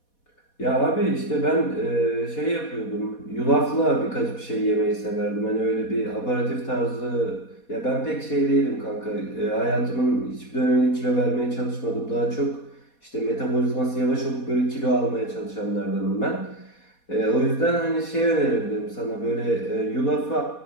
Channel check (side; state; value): right; late; 4.2 ms